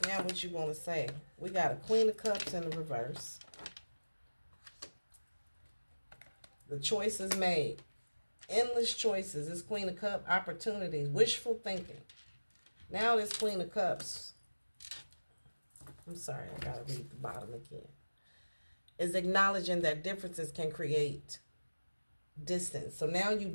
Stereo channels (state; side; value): inverted; both; correlation -1.00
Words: Now what you want to say? We got a Queen of Cups in the reverse. The choice is made. Endless choices. This Queen of Cups, opportunities, wishful thinking. Now this Queen of Cups. I'm sorry, I got to read the bottom again. Is acknowledging that differences can create distance. So now you